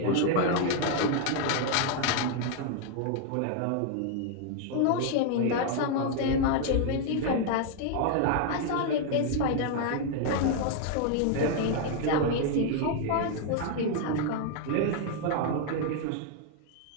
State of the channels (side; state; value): both; different; correlation 0.00